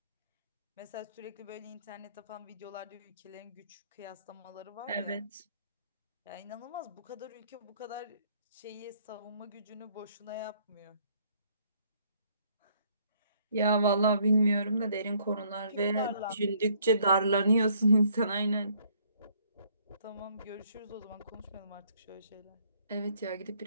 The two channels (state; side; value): inverted; both; correlation -0.65